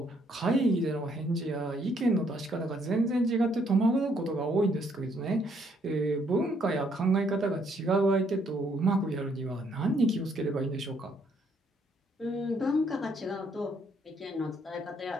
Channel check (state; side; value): normal; both; correlation 0.69